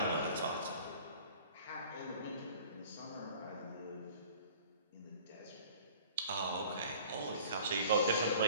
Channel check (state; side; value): inverted; both; correlation -0.48